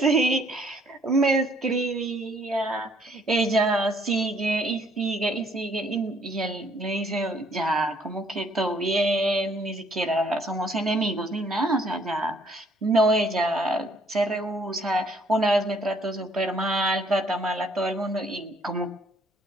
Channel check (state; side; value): normal; both; correlation 0.64